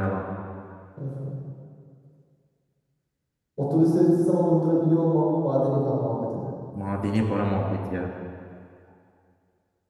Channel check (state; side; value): identical; both; correlation 1.00